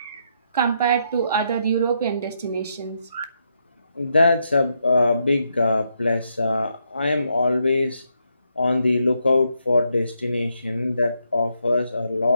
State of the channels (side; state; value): both; inverted; correlation -0.79